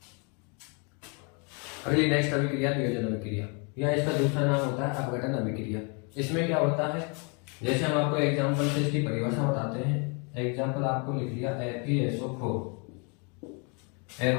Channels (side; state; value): right; quieter; 34.8 dB